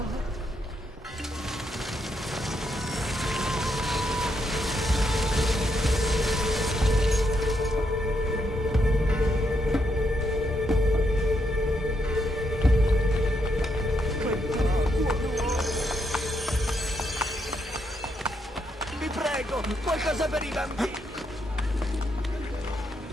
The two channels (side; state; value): both; normal; correlation 0.78